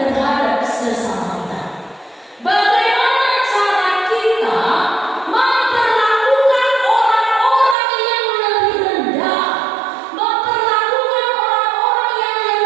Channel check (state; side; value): drops out; left; at 7.8 s